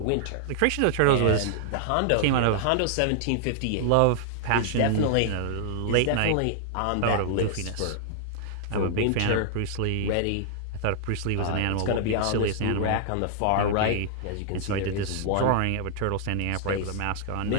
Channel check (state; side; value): different; both; correlation -0.01